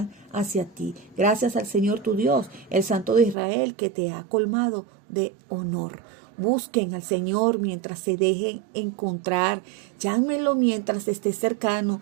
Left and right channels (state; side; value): drops out; left; at 3.4 s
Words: hacia ti. Gracias al Señor tu Dios, el Santo de Israel, que te ha colmado de honor. Busquen al Señor mientras se dejen encontrar. Llámenlo mientras esté cercano.